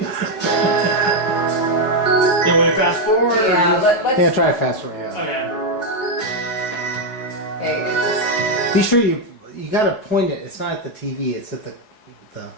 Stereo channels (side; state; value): right; late; 4.7 ms